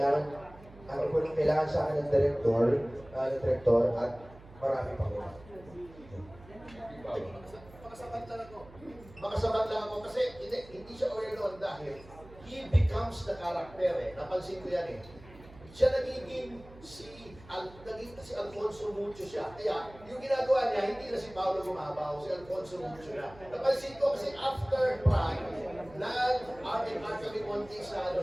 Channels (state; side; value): noise; right; hum, 20 dB below the sound